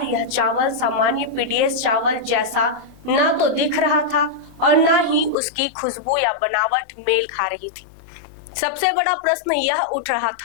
यह चावल सामान्य पीडीएस चावल जैसा ना तो दिख रहा था और ना ही उसकी खुशबू या बनावट मेल खा रही थी। सबसे बड़ा प्रश्न यह उठ रहा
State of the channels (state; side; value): drops out; right; at 5.4 s